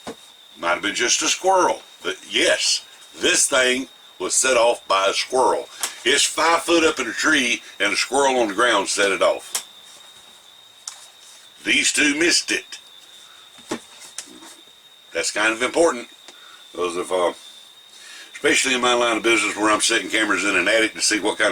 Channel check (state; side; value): identical; both; correlation 1.00